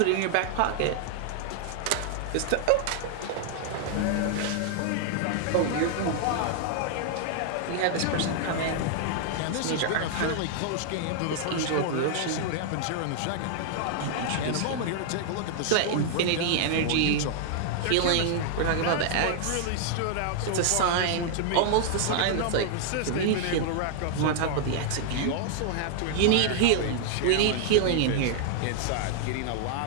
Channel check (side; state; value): both; different; correlation 0.00